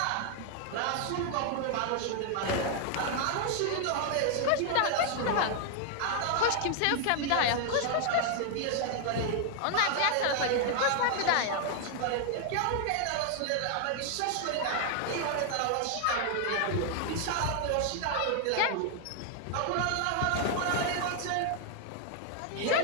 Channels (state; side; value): different; both; correlation 0.00